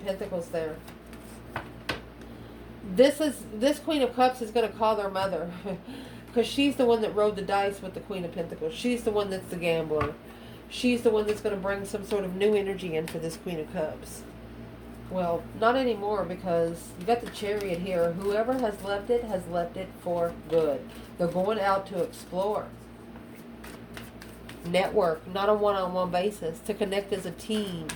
Pentacles there? This Queen of Cups is going to call their mother. Because she's the one that rode the dice with the Queen of Pentacles. She's the one that's the gambler. She's the one that's going to bring some sort of new energy in for this Queen of Cups. Well, not anymore, because you got the Chariot here. Whoever has left it for good. They're going out to explore. Network, not a one-on-one basis. To connect as a team.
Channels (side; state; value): both; identical; correlation 1.00